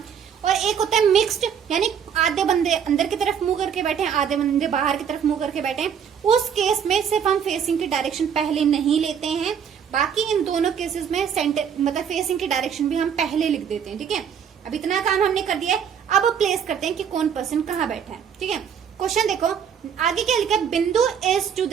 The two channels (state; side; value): quieter; left; 7.8 dB